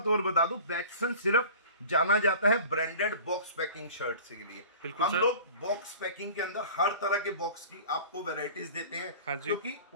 और बता दूं, बैचसन सिर्फ जाना जाता है ब्रांडेड बॉक्स पैकिंग शर्ट्स के लिए। हम लोग बॉक्स पैकिंग के अंदर हर तरह के बॉक्स की आपको वैरायटीज देते हैं। हाँ, क्योंकि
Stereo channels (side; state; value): both; inverted; correlation -0.41